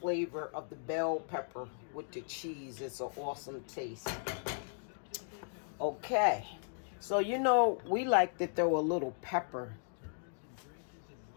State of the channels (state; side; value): silent; right; digital silence